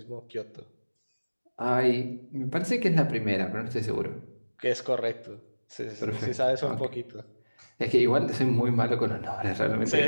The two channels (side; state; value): both; inverted; correlation -1.00